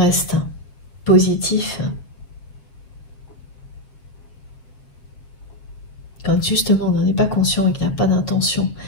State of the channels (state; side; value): late; right; 7.3 ms